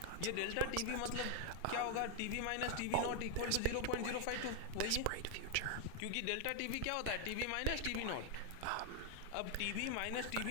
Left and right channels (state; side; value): different; both; correlation 0.00